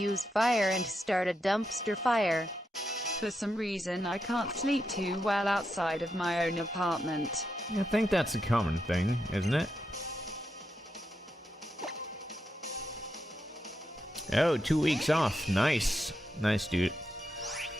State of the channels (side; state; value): both; normal; correlation 0.84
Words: fire and start a dumpster fire. For some reason I can't sleep too well outside of my own apartment. I think that's a common thing, isn't it? Oh, 2 weeks off. Nice. Nice, dude.